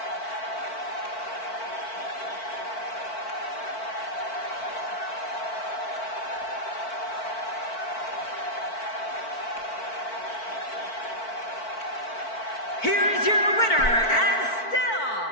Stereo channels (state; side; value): late; right; 4.5 ms